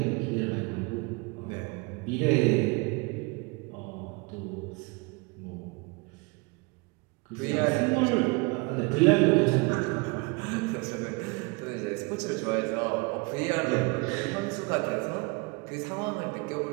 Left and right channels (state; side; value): quieter; left; 28.3 dB